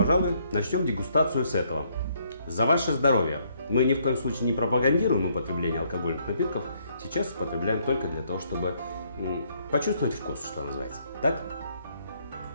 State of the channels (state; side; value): inverted; both; correlation -0.70